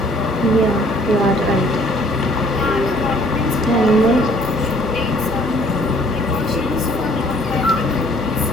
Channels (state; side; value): normal; both; correlation 0.59